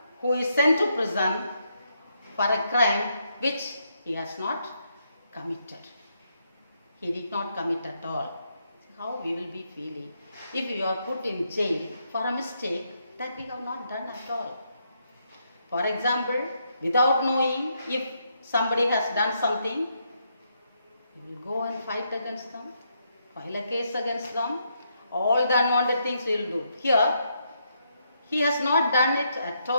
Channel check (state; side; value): inverted; both; correlation -0.78